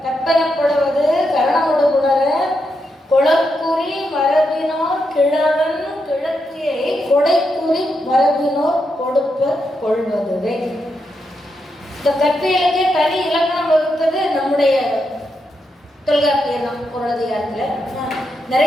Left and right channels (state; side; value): normal; both; correlation 0.83